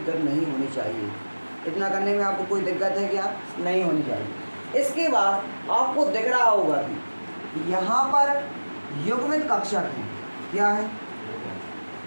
नहीं होनी चाहिए, इतना करने में आपको कोई दिक्कत है क्या? नहीं होनी चाहिए। इसके बाद आपको दिख रहा होगा कि यहाँ पर युग्मित कक्षक है। क्या है?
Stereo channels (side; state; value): both; inverted; correlation -1.00